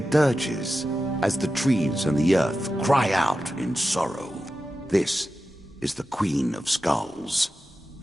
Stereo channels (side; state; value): both; normal; correlation 0.92